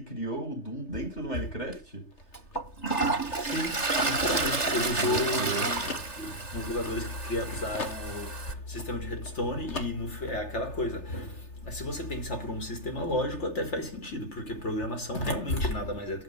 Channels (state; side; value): late; right; 3.3 ms